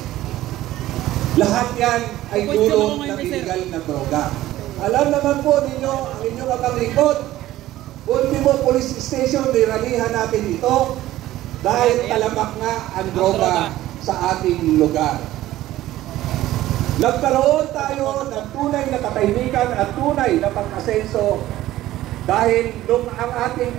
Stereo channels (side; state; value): left; quieter; 15.0 dB